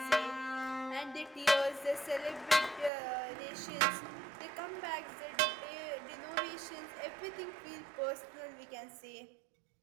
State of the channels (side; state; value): left; drops out; at 2.9 s